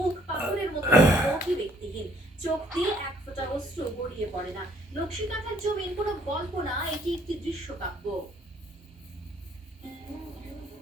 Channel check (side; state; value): both; normal; correlation 0.63